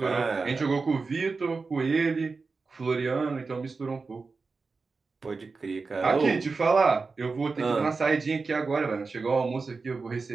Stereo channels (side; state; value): left; quieter; 4.3 dB